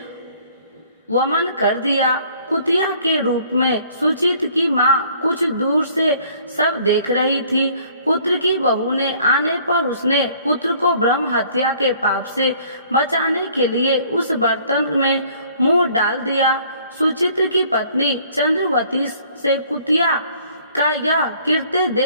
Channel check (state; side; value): inverted; both; correlation -0.57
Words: वमन कर दिया। कुतिया के रूप में सुचित की माँ कुछ दूर से सब देख रही थी। पुत्र की बहू ने आने पर उसने पुत्र को ब्रह्म हत्या के पाप से बचाने के लिए उस बर्तन में मुंह डाल दिया। सुचित्र की पत्नी चंद्रवती से कुतिया का यह कृत्य